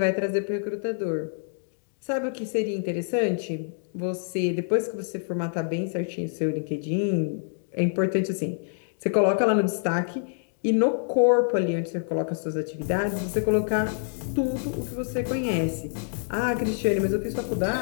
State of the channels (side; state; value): right; silent; digital silence